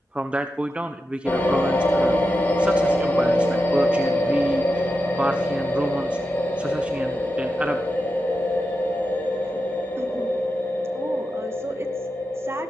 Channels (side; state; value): both; normal; correlation 0.90